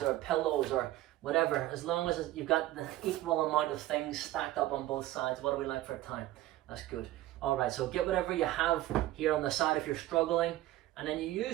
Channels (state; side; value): quieter; left; 15.4 dB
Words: or pillows or whatever, as long as you've got the equal amount of things stacked up on both sides. What do we like for time? That's good. All right, so get whatever you have here on the side if you're struggling, and then you